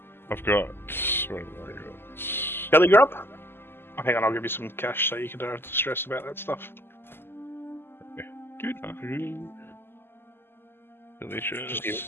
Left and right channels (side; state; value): right; late; 0.11 ms